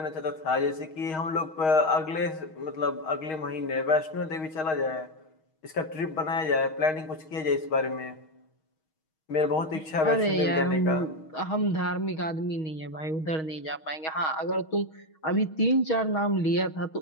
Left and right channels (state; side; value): late; right; 6.3 ms